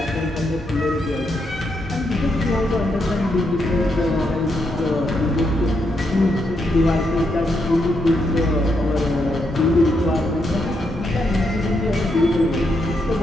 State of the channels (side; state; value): both; normal; correlation 0.80